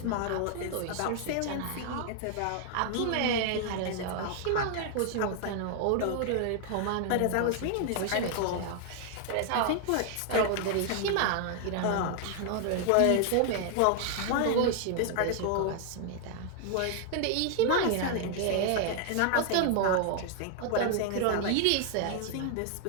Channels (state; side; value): different; both; correlation 0.00